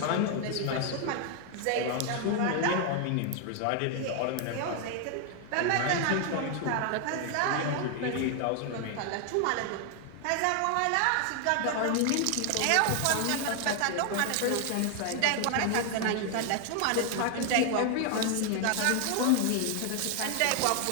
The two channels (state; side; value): different; both; correlation 0.00